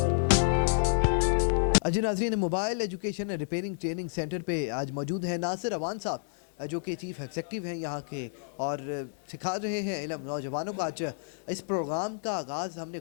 جی ناظرین، mobile education repairing training centre پہ آج موجود ہیں ناصر اوان صاحب، جو کہ چیف ایگزیکٹو ہیں یہاں کے، اور سکھا رہے ہیں علم نوجوانوں کو۔ آج اس پروگرام کا آغاز ہم نے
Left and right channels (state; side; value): silent; right; digital silence